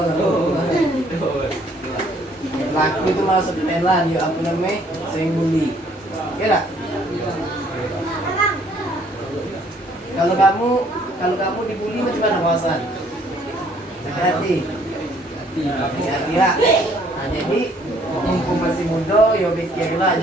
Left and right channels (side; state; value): both; normal; correlation 0.62